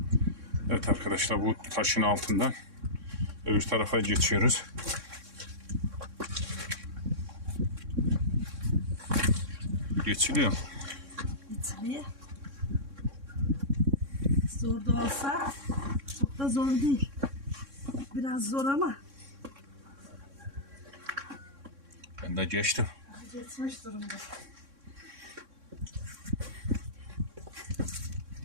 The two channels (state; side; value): late; left; 3.6 ms